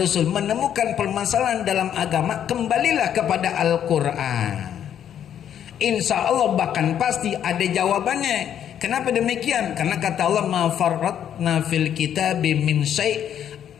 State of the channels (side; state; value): right; quieter; 9.6 dB